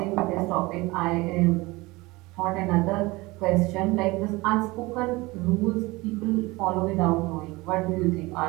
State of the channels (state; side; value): quieter; left; 22.1 dB